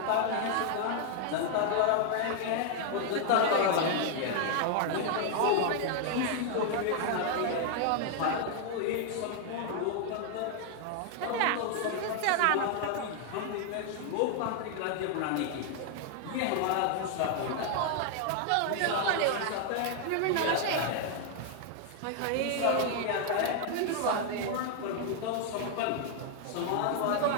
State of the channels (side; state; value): both; different; correlation 0.00